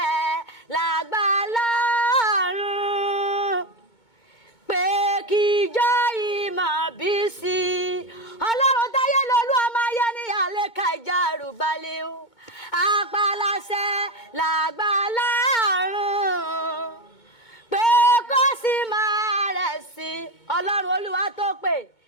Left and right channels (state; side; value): late; right; 2.2 ms